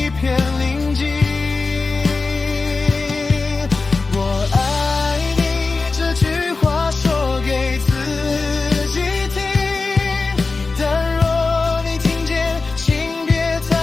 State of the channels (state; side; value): quieter; right; 4.0 dB